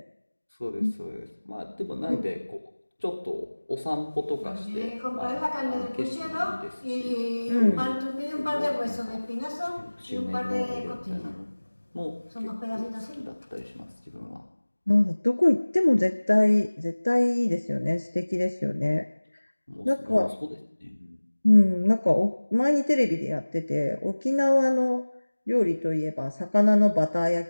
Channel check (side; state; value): both; inverted; correlation -1.00